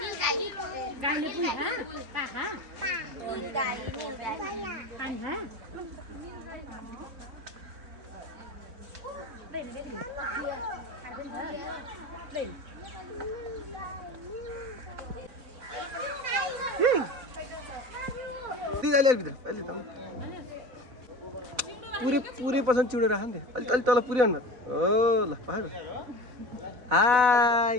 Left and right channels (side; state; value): left; late; 4.0 ms